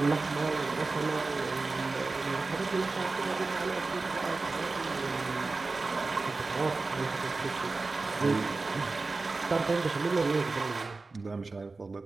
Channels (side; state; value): left; quieter; 3.7 dB